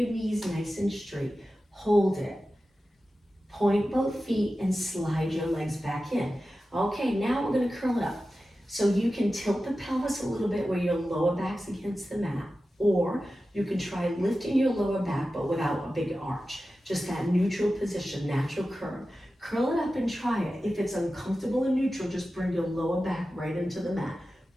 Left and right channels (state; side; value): normal; both; correlation 0.94